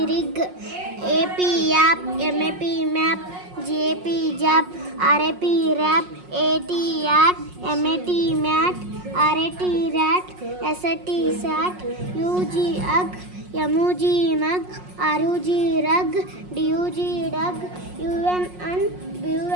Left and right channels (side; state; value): left; late; 5.5 ms